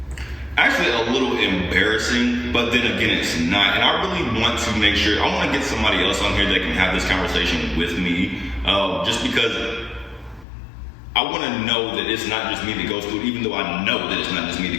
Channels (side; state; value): right; drops out; at 10.5 s